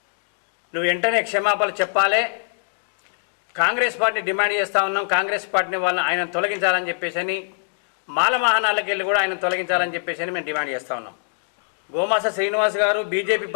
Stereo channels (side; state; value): right; silent; digital silence